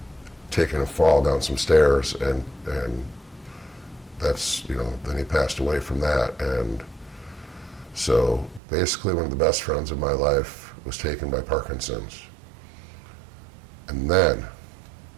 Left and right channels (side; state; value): left; drops out; at 8.6 s